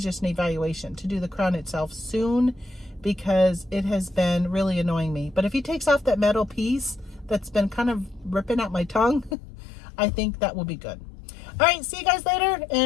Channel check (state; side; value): drops out; right; at 9.3 s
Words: just an evaluation, to do the crown itself soon, because it has been really annoying me. But if he takes off that metal piece that's been kind of ripping out my tongue, I think that will be good. All right, see you guys later,